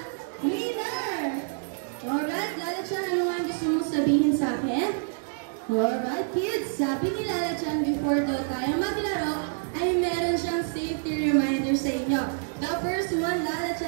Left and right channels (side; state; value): left; silent; digital silence